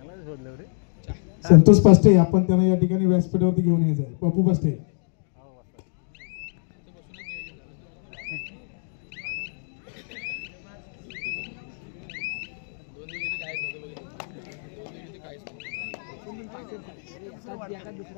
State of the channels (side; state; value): right; silent; 62 dB below the other